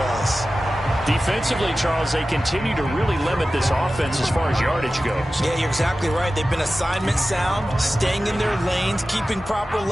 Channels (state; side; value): normal; both; correlation 0.95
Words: Defensively, Charles, they continue to really limit this offense as far as yardage goes. Yeah, you're exactly right. They've been assignment sound, staying in their lanes, keeping proper